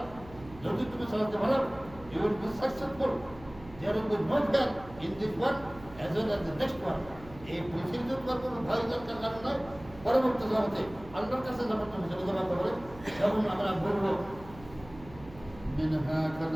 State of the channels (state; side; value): noise; right; hum, 18 dB below the sound